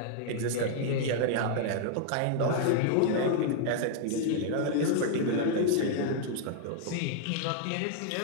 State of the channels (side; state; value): both; different; correlation 0.00